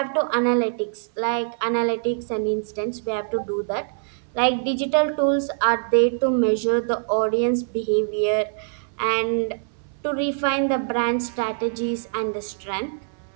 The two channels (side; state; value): left; silent; 63 dB below the other